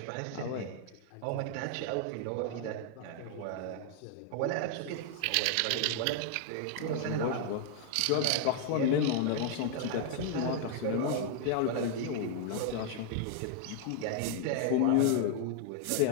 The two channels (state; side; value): different; both; correlation 0.00